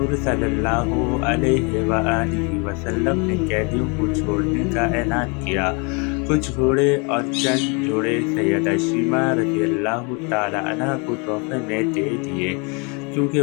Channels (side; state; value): right; quieter; 32.8 dB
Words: सल्लल्लाहु अलैहि वसल्लम ने कैदियों को छोड़ने का ऐलान किया। कुछ घोड़े और चंद जोड़े सैयदा शीमा रज़ियल्लाहु ताला अन्हा को तोहफ़े में दे दिए, क्योंकि